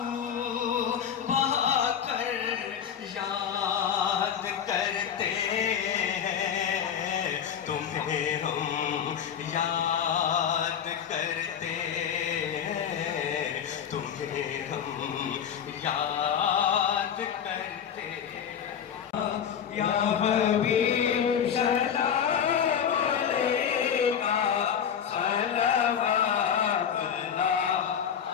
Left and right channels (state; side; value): quieter; right; 8.3 dB